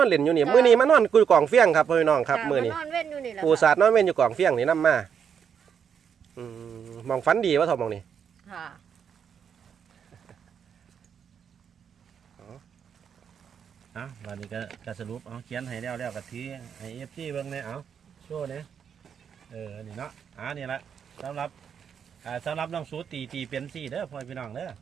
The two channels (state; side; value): quieter; left; 7.5 dB